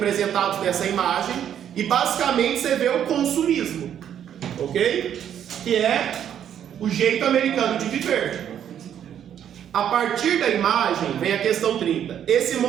nessa imagem e basicamente você vê o consumismo, ok? Que é o jeito americano de viver. A partir da imagem vem a questão 30. Esse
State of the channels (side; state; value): left; quieter; 9.6 dB